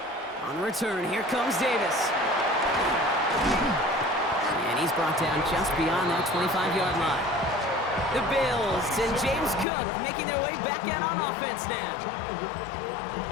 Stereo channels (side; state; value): right; drops out; at 9.7 s